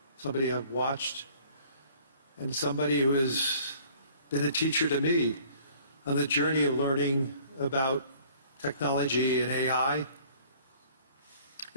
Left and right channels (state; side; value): inverted; both; correlation -0.55